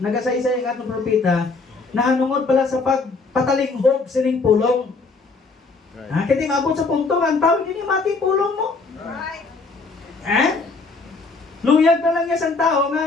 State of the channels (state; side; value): quieter; right; 4.0 dB